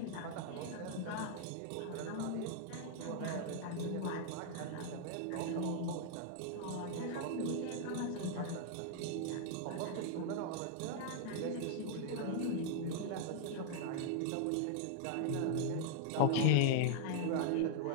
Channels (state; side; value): different; both; correlation 0.00